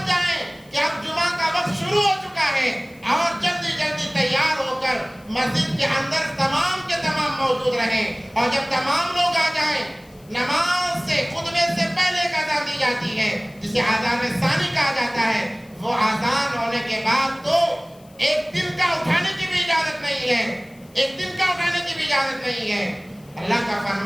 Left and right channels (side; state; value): left; noise; hiss, 29 dB below the sound